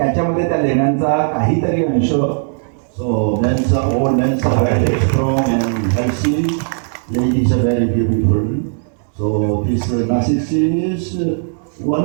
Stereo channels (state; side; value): silent; left; digital silence